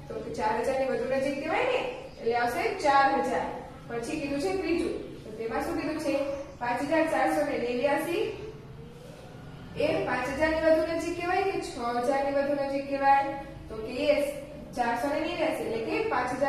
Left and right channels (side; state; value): both; identical; correlation 1.00